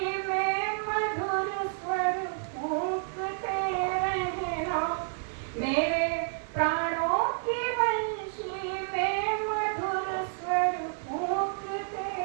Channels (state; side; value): silent; left; 58 dB below the other